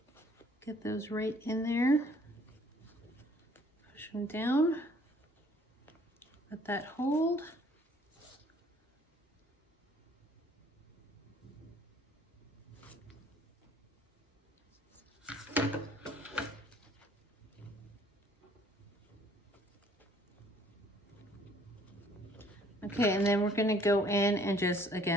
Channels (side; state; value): both; normal; correlation 0.59